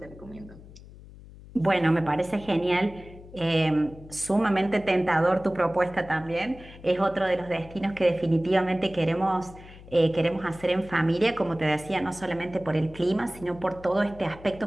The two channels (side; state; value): left; noise; hum, 19 dB below the sound